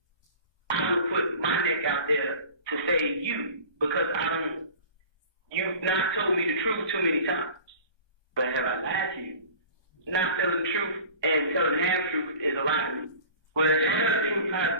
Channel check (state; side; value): late; right; 1.2 ms